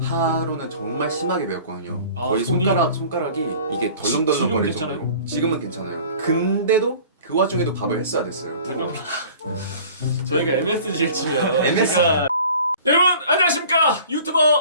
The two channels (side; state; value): both; inverted; correlation -0.46